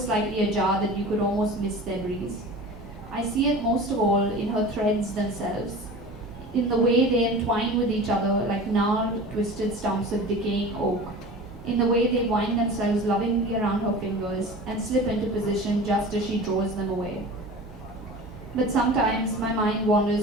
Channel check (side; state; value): both; normal; correlation 0.36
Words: ajar that you could almost miss their breeze. I see it most of all in her threads themselves, in the way they entwine with each other like gnarled, twisted stumps of decaying oak, in the way they wind themselves lovingly around her fingers and slip into position just as she draws them away. But sometimes my mind